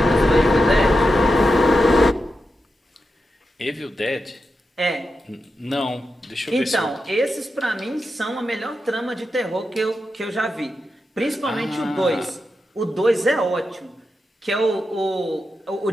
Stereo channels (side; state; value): both; normal; correlation 0.88